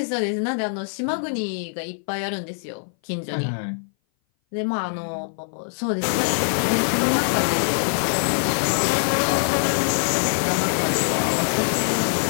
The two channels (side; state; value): right; silent; 58 dB below the other